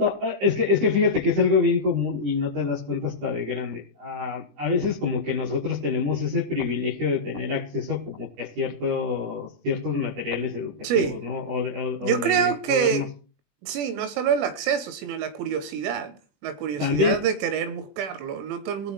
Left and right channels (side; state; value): left; late; 21 ms